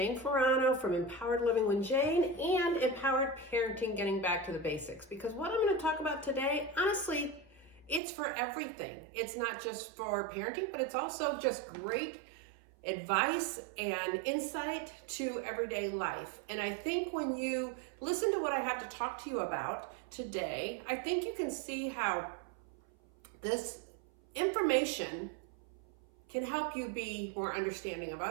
Ferrano from Empowered Living with Jane and Empowered Parenting, Getting Back to the Basics. Because what I'm going to talk about today, honestly, it's for everything. It's not just for parenting, but it's also just great advice and insight to everyday life. And I think when you listen to what I have to talk to you about today, I think you can see how this information can help you be more understanding of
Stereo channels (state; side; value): drops out; left; at 8.0 s